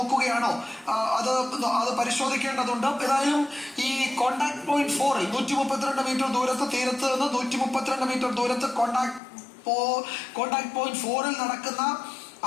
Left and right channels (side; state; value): right; drops out; at 9.2 s